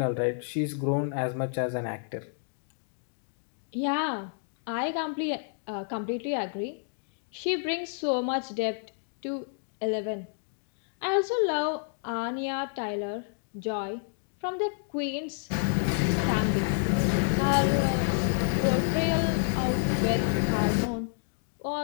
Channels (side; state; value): right; silent; digital silence